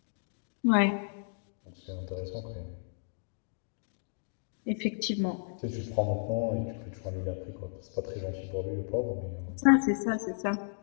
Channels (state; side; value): silent; right; digital silence